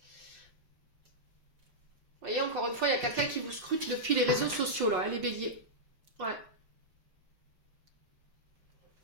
Vous voyez, encore une fois, il y a quelqu'un qui vous scrute depuis les réseaux sociaux, là, hein, les béliers. Ouais.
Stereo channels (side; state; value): left; late; 5.6 ms